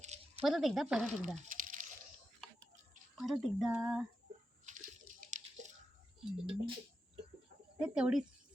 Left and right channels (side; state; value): both; normal; correlation 0.89